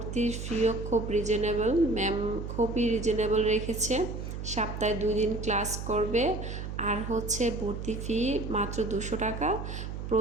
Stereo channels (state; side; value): noise; right; hum, 6 dB below the sound